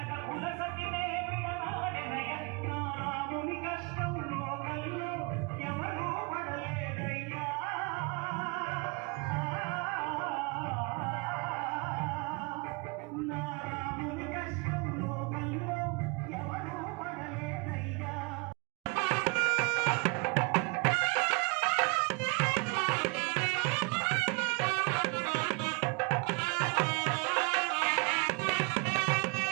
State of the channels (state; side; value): quieter; left; 31.2 dB